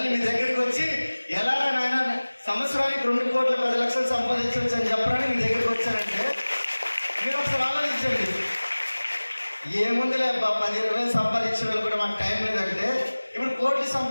మీ దగ్గరికి వచ్చి ఎలా నాయన సంవత్సరానికి 2,10,00,000 సంపాదించవచ్చు అని చెప్పడానికి మీ దగ్గరికి వచ్చానంటే మీరు ఒకసారి ఆలోచించండి. ఏముందిలే 10,000 సంపాదించే వాళ్ళు కూడా మాకు టైం లేదంటే ఇప్పుడు కోట్లు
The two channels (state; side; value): inverted; both; correlation -1.00